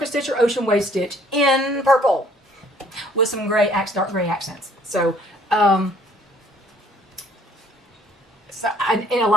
Stitch or Ocean Wave Stitch in purple with some dark gray accents. So, and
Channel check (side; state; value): both; normal; correlation 0.59